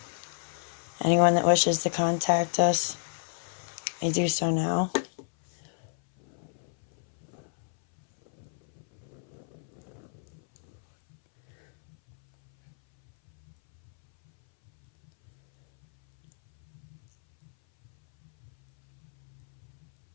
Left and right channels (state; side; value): silent; right; 58 dB below the other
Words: Anyone that wishes to contact us may do so now.